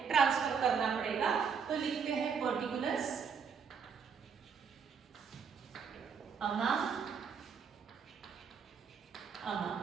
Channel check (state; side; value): quieter; left; 6.3 dB